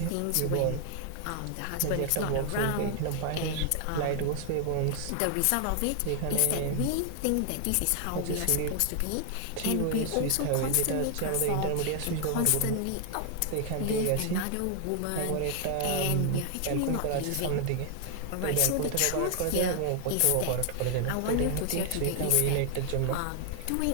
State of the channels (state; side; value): different; both; correlation 0.00